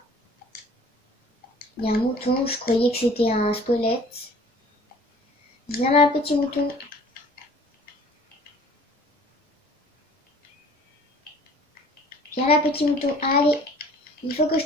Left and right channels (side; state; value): both; normal; correlation 0.50